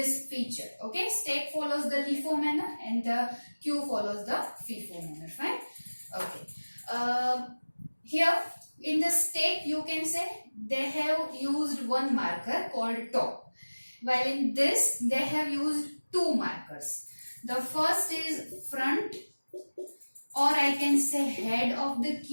feature. Okay, stack follows the LIFO manner and the queue follows the FIFO manner. Fine. Okay. Here in the stack, you can say they have used one marker called top, while in this they have used 2 markers. The first is front, or I can say head of the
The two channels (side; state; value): both; inverted; correlation -1.00